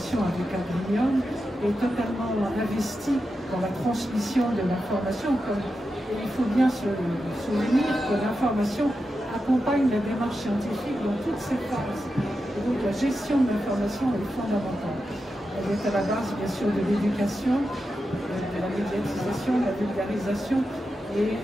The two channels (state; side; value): normal; both; correlation 0.89